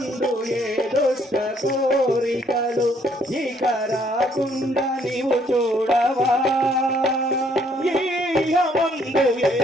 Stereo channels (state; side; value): normal; both; correlation 0.66